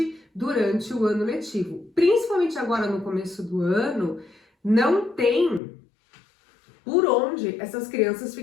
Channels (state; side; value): drops out; right; at 5.6 s